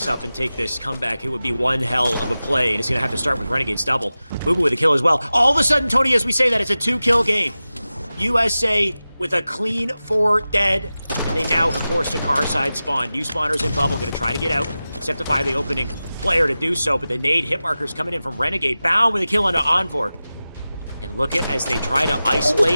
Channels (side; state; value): both; inverted; correlation -0.95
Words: up and take this comeback. It would be one hell of a play, and it's going to have to start with Renegade's double. Boo Boo with a kill as well. All of a sudden, Tony, as we say that, it's a 2-kill game. USA with a clean 4 dead, and they now have forced a Car side spawn. New spawners in bubble, going to try to get out. Septify the opening player to do so, but the nade hit markers coming in from Renegade. Bound with a kill onto Envor. And look at as they try to